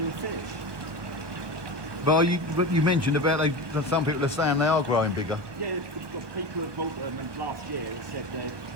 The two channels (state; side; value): late; left; 1.2 ms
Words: fish. But you mentioned about some people are saying they are growing bigger. Yeah, the people who bought them last year have said that